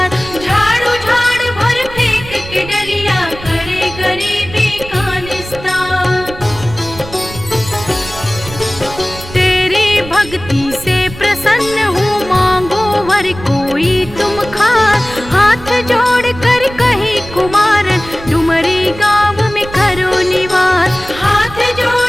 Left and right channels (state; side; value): noise; right; rumble, 14 dB below the sound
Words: झाड़ू झाड़ भर फेंक के डलिया करे गरीबी का निस्तार। तेरी भक्ति से प्रसन्न हूँ मांगो वर कोई तुम खास। हाथ जोड़ कर कही कुमारन डुमरी गाँव में करो निवास। हाथ